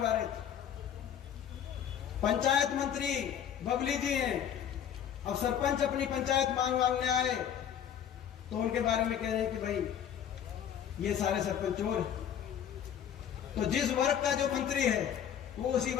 रहे थे। पंचायत मंत्री बबली जी हैं, अब सरपंच अपनी पंचायत मांगने आए तो उनके बारे में कह रहे हैं कि भाई ये सारे सरपंच चोर हैं। तो जिस वर्ग का जो मंत्री है वो उसी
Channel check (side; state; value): right; quieter; 9.2 dB